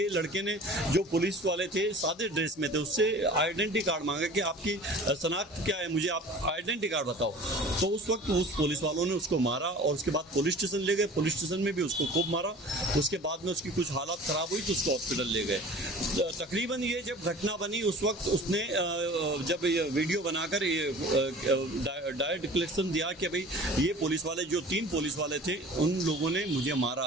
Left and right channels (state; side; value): normal; both; correlation 0.43